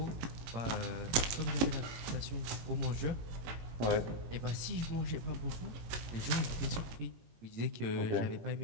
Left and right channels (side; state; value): left; late; 19 ms